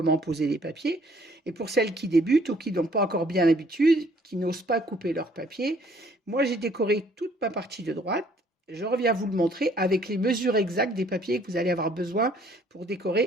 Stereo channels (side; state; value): both; normal; correlation 0.61